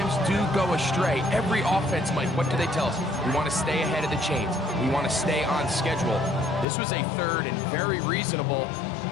do go astray. Every offense, Mike, what do they tell us? We want to stay ahead of the chains. We want to stay on schedule. This was a 3rd and very reasonable.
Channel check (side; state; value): right; drops out; at 6.7 s